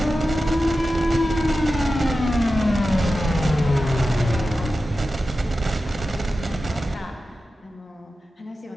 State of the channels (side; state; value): both; normal; correlation 0.93